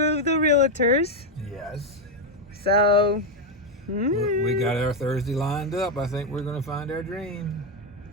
of the realtors. Yes. So We got our Thursday lined up. I think we're going to find our dream.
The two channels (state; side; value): normal; both; correlation 0.05